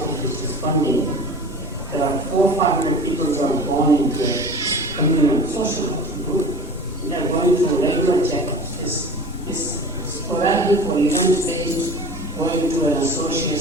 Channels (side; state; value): left; noise; rumble, 15 dB below the sound